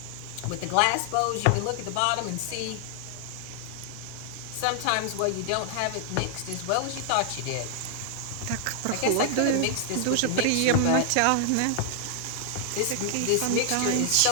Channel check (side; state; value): both; different; correlation 0.00